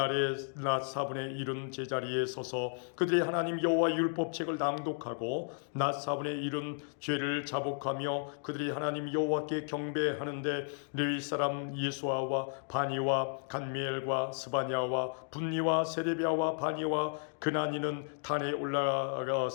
낮 4분의 1은 제자리에 서서 그들의 하나님 여호와 율법책을 낭독하고 낮 4분의 1은 죄를 자복하며 그들이 하나님 여호와께 경배하는데 레위 사람 예수아와 바니와 간미엘과 스바냐와 분니와 세레비아와 바니와 그나니는 단에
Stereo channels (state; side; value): silent; right; 55 dB below the other